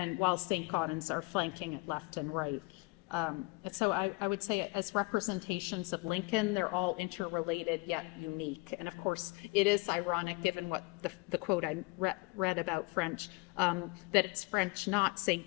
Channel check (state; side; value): quieter; right; 26.0 dB